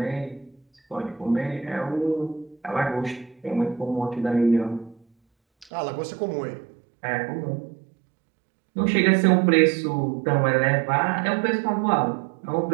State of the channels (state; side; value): drops out; left; at 5.7 s